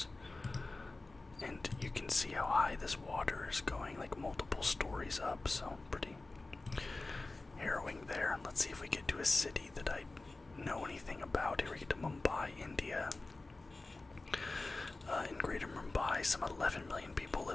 And you can see how high this water is going, like multiple stories up. So pretty harrowing there. Let's see if we get to a city that I know anything about. Here we get to Mumbai, India. In Greater Mumbai, some 11 million people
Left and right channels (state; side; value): quieter; right; 3.2 dB